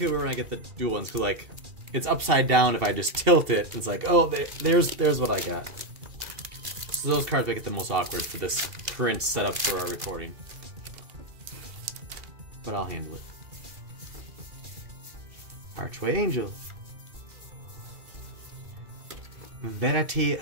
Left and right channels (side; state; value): left; late; 2.7 ms